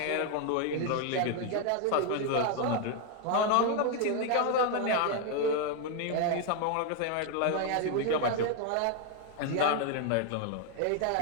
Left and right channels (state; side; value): different; both; correlation 0.01